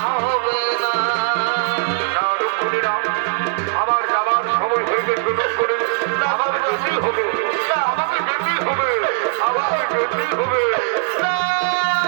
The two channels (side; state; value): left; silent; digital silence